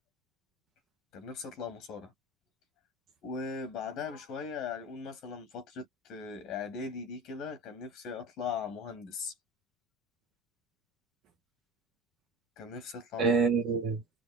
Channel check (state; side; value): normal; both; correlation 0.34